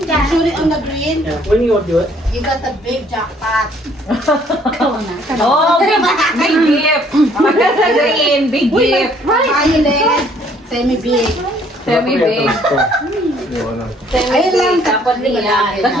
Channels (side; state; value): both; normal; correlation 0.62